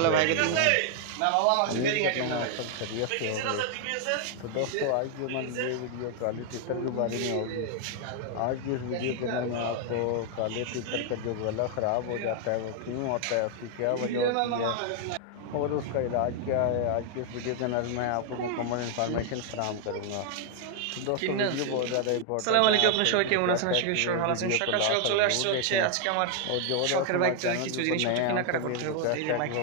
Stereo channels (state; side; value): different; both; correlation 0.00